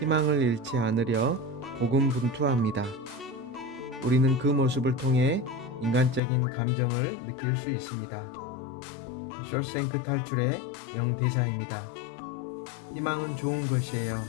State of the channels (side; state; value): right; drops out; at 6.2 s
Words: 잃지 않으려 고군분투합니다. 우리는 그 모습을 통해 인간적인 감정을 느낄 수 있습니다. 쇼생크 탈출의 명대사입니다. 희망은 좋은 것이에요.